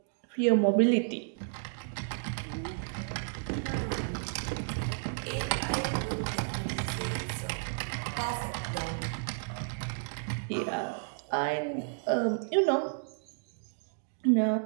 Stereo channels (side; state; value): left; silent; digital silence